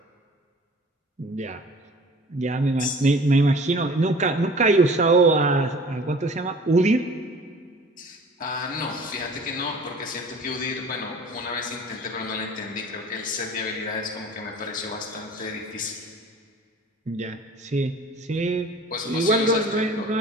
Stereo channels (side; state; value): both; normal; correlation 0.46